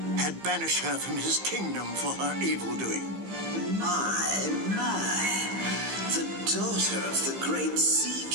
had banished her from his kingdom for her evil doing. My, the daughter of the great Sea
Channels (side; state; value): left; late; 15 ms